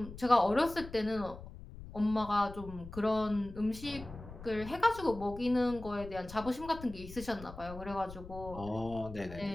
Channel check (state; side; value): noise; left; rumble, 14 dB below the sound